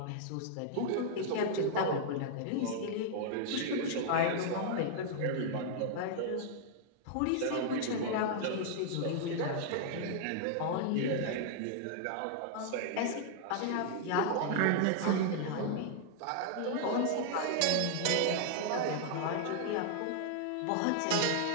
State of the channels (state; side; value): different; both; correlation -0.01